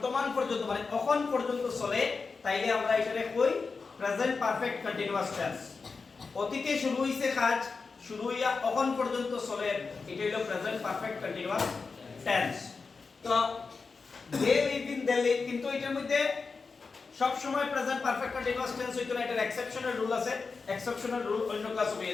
পর্যন্ত মানে এখন পর্যন্ত চলে তাইলে আমরা এটারে কই প্রেজেন্ট পারফেক্ট কন্টিনিউয়াস টেন্স। অতীতে শুরু হইছে কাজ, শুরু হইয়া এখন পর্যন্ত চলে, এটা হলো প্রেজেন্ট পারফেক্ট কন্টিনিউয়াস টেন্স। তো দে লিভ ইন দিল্লি, কিন্তু এটার মধ্যে সব সময় প্রেজেন্ট পারফেক্ট কন্টিনিউয়াস টেন্স হইতো না, এটার এক্সেপশনাল রুল আছে। এক্সেপশনাল রুল অন্য ক্লাসে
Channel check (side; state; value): right; quieter; 4.6 dB